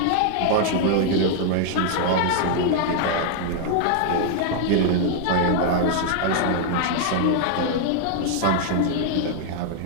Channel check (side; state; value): both; different; correlation 0.00